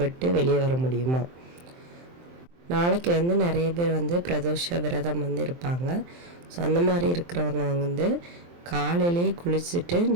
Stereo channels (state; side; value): late; left; 23 ms